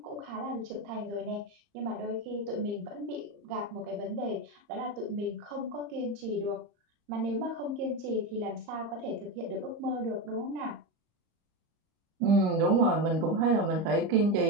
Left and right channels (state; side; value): late; left; 30 ms